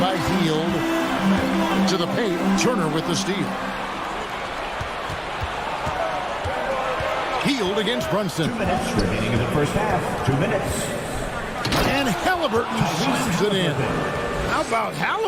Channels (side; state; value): both; identical; correlation 1.00